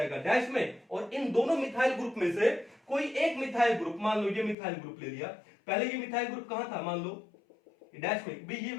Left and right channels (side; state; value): right; drops out; at 4.5 s